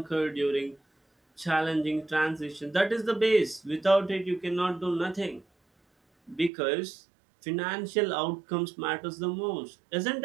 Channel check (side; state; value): left; drops out; at 6.5 s